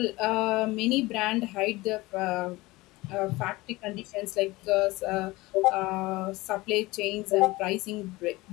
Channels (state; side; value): quieter; right; 20.7 dB